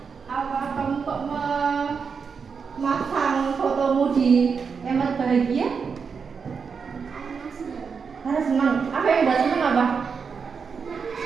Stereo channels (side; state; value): left; quieter; 5.8 dB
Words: apa kamu kok memasang fotomu di emot bahagia? Karena senang. Apa yang buat senang apa?